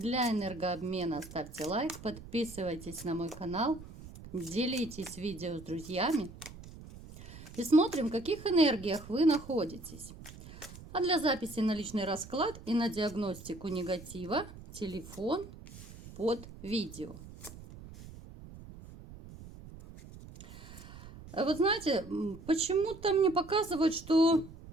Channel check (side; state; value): right; noise; rumble, 16 dB below the sound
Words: энергообмена ставьте лайк, подписывайтесь на мой канал, делитесь видео с друзьями. И смотрим, в каких энергиях вы находитесь. А для записи на личный расклад и на диагностику негатива телефон под видео. Вот знаете, почему-то мне показывают, что